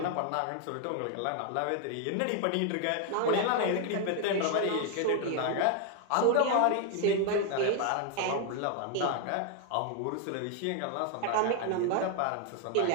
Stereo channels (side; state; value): both; different; correlation 0.00